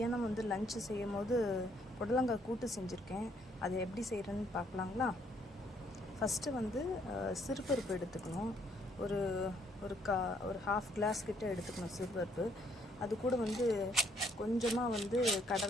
லஞ்சு செய்யும் போது புடலங்காய் கூட்டு செஞ்சுருக்கேன். அதை எப்படி செய்கிறேன்னு பார்க்கலாங்களா? ஃபஸ்ட்டு சிறுபருப்பு எடுத்துக்கணும். ஒரு ஒரு ஹாஃப் கிளாஸ் கிட்ட எடுத்துக்கணும் சிறுபருப்பு. அது கூட கொஞ்சமாக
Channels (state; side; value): normal; both; correlation 0.68